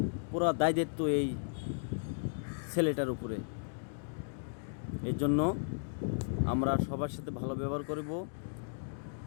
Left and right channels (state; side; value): silent; right; digital silence